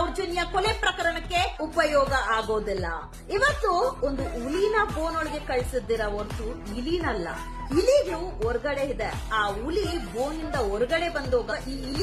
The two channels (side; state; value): both; identical; correlation 1.00